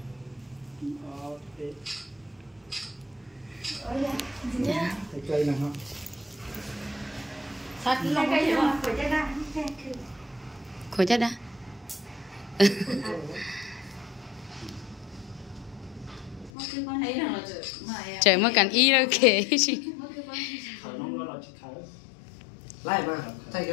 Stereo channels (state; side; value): drops out; right; at 16.5 s